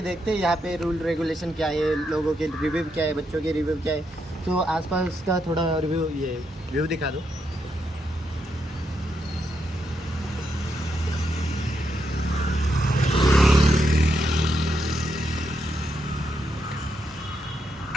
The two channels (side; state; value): both; normal; correlation 0.81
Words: देखते हैं यहाँ पे रूल रेगुलेशन क्या है, लोगों के रिव्यू क्या है, बच्चों के रिव्यू क्या है। तो आसपास का थोड़ा रिव्यू ये व्यू दिखा दो।